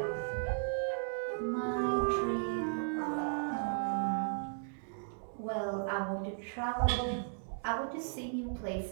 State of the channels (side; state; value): left; silent; digital silence